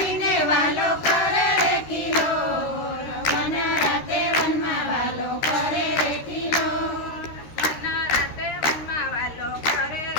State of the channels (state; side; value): late; right; 13 ms